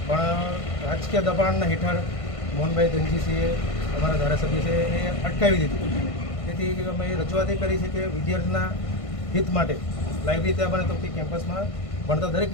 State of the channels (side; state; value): right; late; 1.5 ms